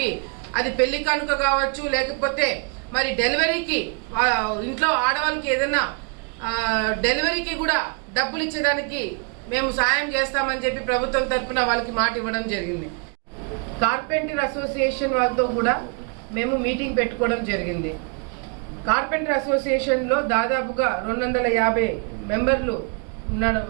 అది పెళ్లి కానుక కావచ్చు, లేకపోతే మరి డెలివరీకి ఇంట్లో ఆడవాళ్ళకి ఏదైనా డెలివరీకి కూడా డబ్బులు ఇచ్చేదానికి మేము సాయం చేస్తామని చెప్పి ప్రభుత్వం తరఫున వాళ్ళకి మాట ఇవ్వడం జరిగింది. కార్పెంటర్ అసోసియేషన్ వాళ్ళతో కూడా మేము మీటింగ్ పెట్టుకోవడం జరిగింది. కార్పెంటర్ అసోసియేషన్లో దాదాపుగా 250 మెంబర్లు ఉన్నారు.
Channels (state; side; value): quieter; left; 35.8 dB